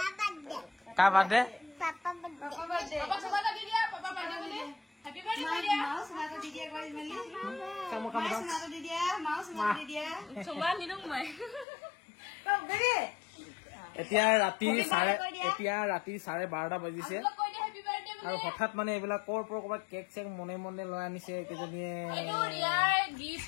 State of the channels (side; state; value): right; drops out; at 11.7 s